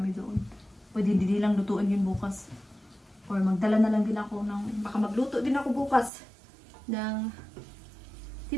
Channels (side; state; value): left; drops out; at 6.1 s